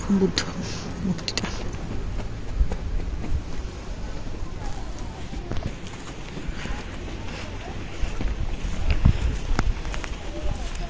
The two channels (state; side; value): identical; both; correlation 1.00